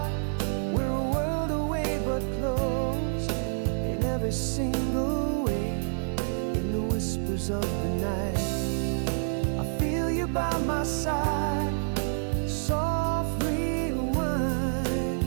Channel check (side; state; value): left; silent; 59 dB below the other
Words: We're a world away but close, in every single way. In the whispers of the night, I feel you by my side. Soft rewind.